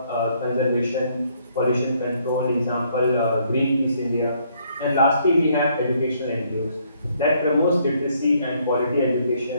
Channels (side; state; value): both; inverted; correlation -0.68